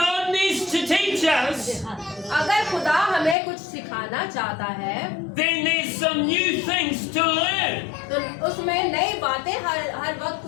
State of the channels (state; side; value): drops out; right; at 3.4 s